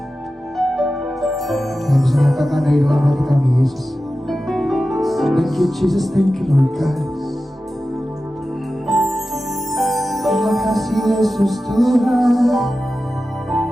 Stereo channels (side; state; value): both; normal; correlation 0.93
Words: yang bisa nyatakan dari dalam hati kami Yesus. Thank you Jesus, thank you Lord God. Terima kasih Yesus Tuhan.